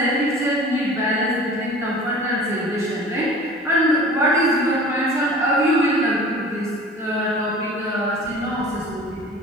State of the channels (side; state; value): both; normal; correlation 0.42